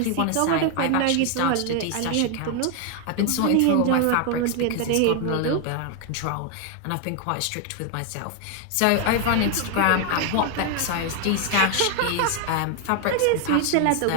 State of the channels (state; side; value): different; both; correlation 0.01